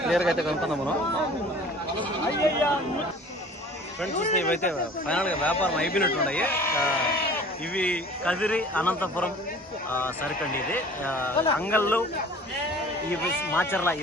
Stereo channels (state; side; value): normal; both; correlation 0.47